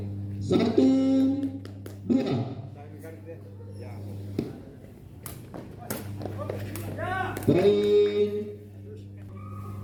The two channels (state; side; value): identical; both; correlation 1.00